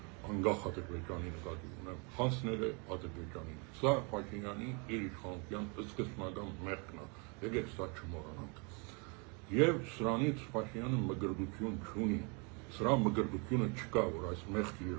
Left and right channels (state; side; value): quieter; left; 33.0 dB